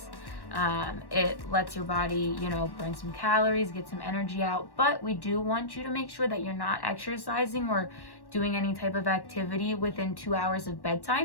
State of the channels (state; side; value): late; right; 1.1 ms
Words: It lets your body, burn some calories, get some energy out. But we do want you to make sure that you're not exercising or doing any type of activity within 2 hours of